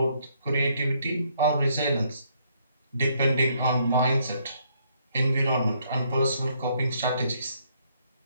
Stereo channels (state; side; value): inverted; both; correlation -0.70